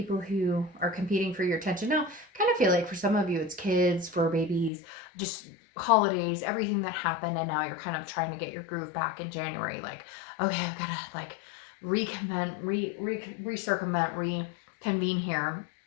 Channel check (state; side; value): drops out; right; at 4.7 s